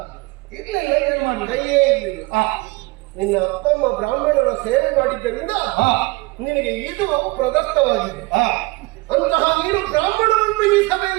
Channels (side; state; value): left; quieter; 23.4 dB